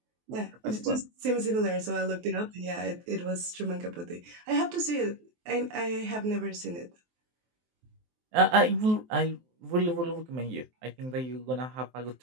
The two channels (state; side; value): late; left; 23 ms